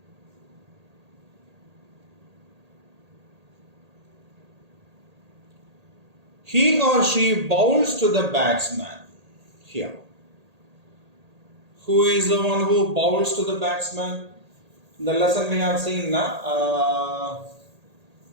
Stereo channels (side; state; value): left; late; 1.8 ms